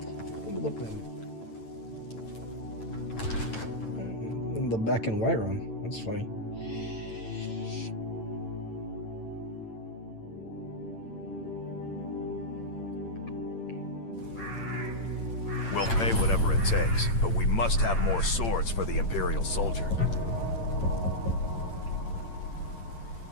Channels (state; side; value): late; right; 8.9 ms